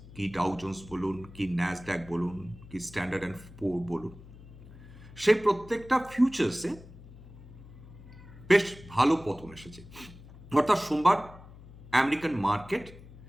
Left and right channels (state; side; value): noise; left; hum, 18 dB below the sound